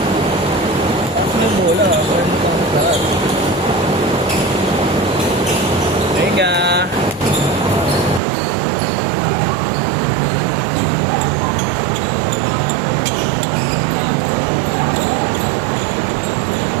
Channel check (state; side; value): drops out; left; at 8.2 s